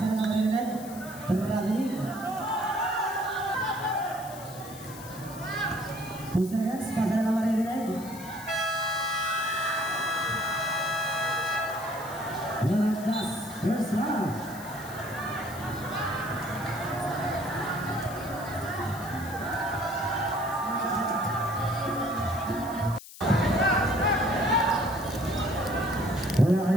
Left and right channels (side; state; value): left; noise; hiss, 16 dB below the sound